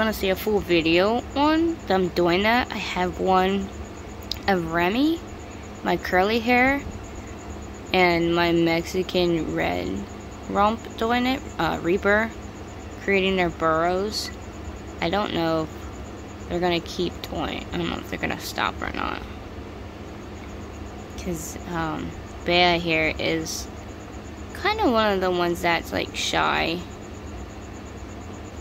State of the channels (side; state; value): both; identical; correlation 1.00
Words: to see a full video on them doing that, I have one of Remy, my curly hair, and my Mexican red rump doing it, Reaper, creating their burrows. I don't know if they're going to keep doing. I don't know if they're going to stop or not. Because Bea here is kind of one of the ones that's like shy.